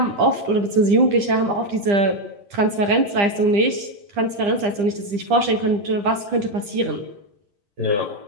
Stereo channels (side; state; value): left; late; 9.9 ms